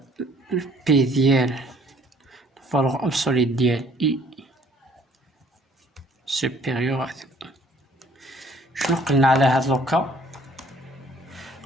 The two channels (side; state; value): both; normal; correlation 0.59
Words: بي ديال الفالور ابسوليت ديال اي سوبيريور. شنو قلنا على هاد لوكا؟